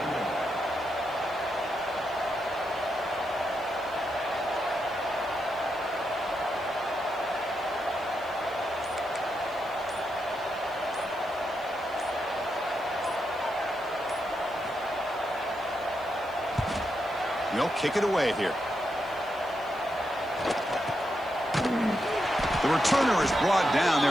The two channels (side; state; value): right; noise; hiss, 25 dB below the sound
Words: They'll kick it away here. The returner is brought down.